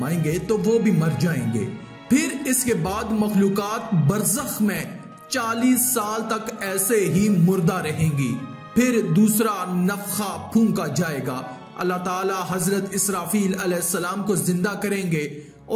तो वो भी मर जाएंगे। फिर इसके बाद मखलूकात बरज़ख में 40 साल तक ऐसे ही मुर्दा रहेंगी। फिर दूसरा नफखा फूंका जाएगा। अल्लाह ताला हजरत इसराफील अलैहिस्सलाम को जिंदा करेंगे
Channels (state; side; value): identical; both; correlation 1.00